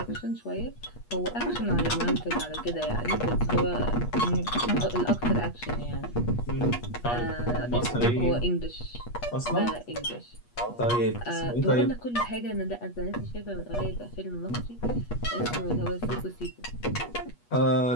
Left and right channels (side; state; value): right; late; 8.3 ms